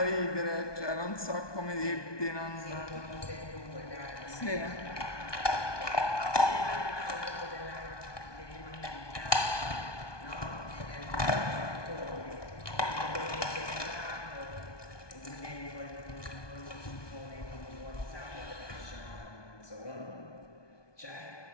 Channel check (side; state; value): right; late; 1.2 ms